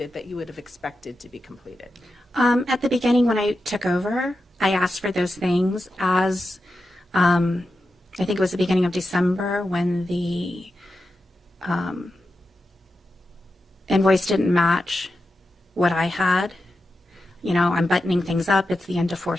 that you would have expected to be completed? At the beginning when I took over, I asked for those things as, I think it was the beginning of December when the invoice didn't match what I had. You know, I'm buttoning things up. It's the end of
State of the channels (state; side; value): normal; both; correlation 0.90